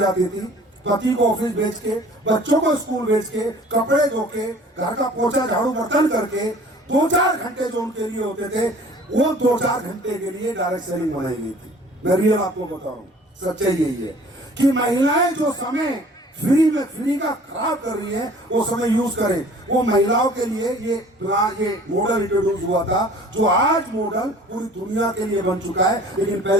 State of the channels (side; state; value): both; normal; correlation 0.49